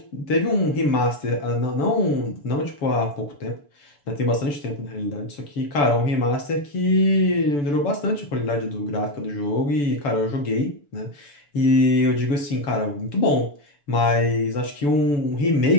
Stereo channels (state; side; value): late; right; 6.9 ms